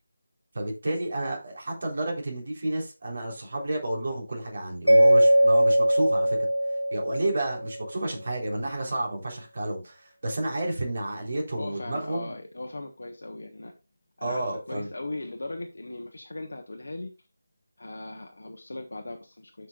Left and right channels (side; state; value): both; inverted; correlation -0.97